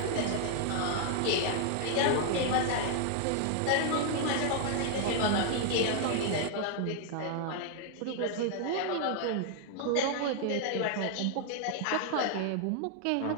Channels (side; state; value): both; different; correlation 0.00